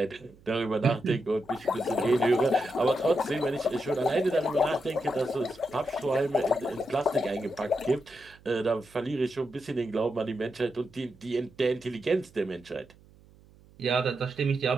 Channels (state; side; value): noise; right; hum, 26 dB below the sound